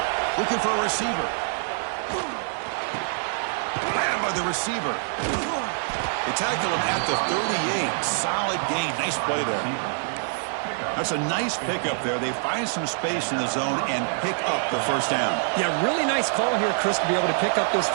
Looking for a receiver. Grabbed by the receiver. They tackled him at the 38. Solid gain. Nice play there. That's a nice pickup there. They find some space in the zone and pick up the 1st down. Yeah, really nice call here, Chris, to be able to pick up this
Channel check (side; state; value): left; silent; digital silence